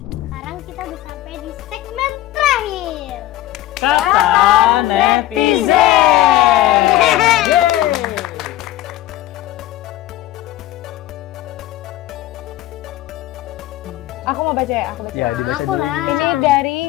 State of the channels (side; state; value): right; quieter; 14.7 dB